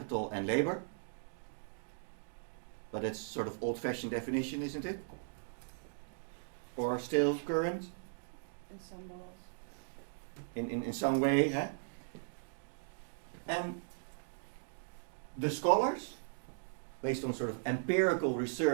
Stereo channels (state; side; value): silent; left; digital silence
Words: and labor. But it's sort of old-fashioned definition, isn't it? Or still current? In some laws. in some way. Huh? And the scholars, based on sort of empirical